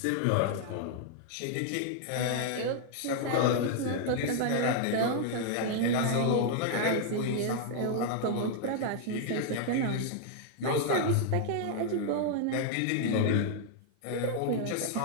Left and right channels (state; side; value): different; both; correlation -0.01